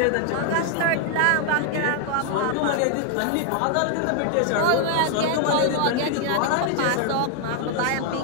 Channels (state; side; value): different; both; correlation 0.00